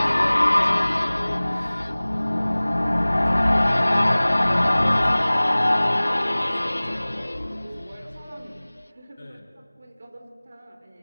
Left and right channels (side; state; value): both; inverted; correlation -1.00